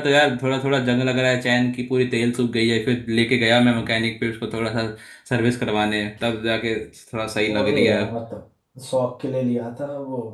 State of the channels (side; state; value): both; identical; correlation 1.00